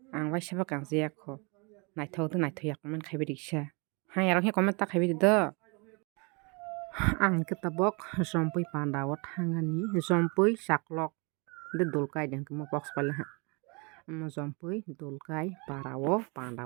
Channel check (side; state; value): left; quieter; 31.2 dB